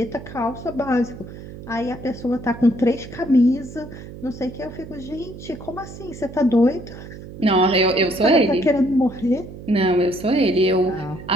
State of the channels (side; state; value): right; noise; hum, 14 dB below the sound